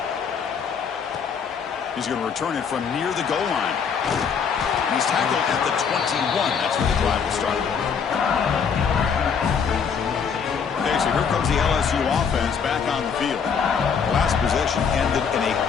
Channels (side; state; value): right; quieter; 6.5 dB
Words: He's going to return it from near the goal line. He's tackled at the 21. That's where the drive will start. Okay, so here comes the LSU offense back on the field. The last possession ended in a